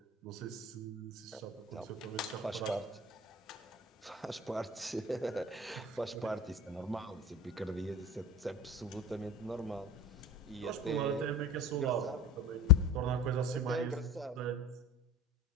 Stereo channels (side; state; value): both; normal; correlation 0.34